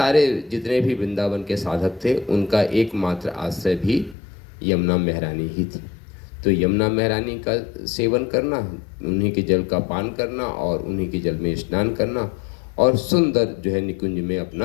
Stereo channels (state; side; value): drops out; right; at 4.2 s